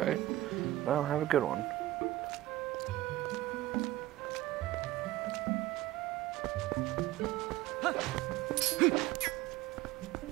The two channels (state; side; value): quieter; left; 16.1 dB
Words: Well, have a good one.